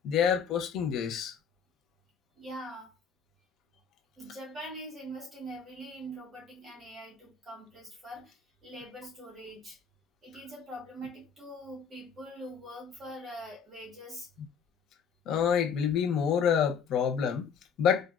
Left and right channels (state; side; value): quieter; right; 6.8 dB